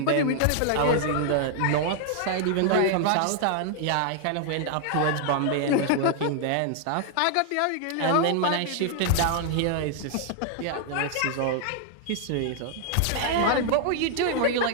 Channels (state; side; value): different; both; correlation 0.00